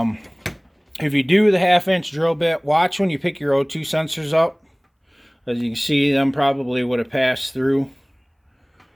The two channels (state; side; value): identical; both; correlation 1.00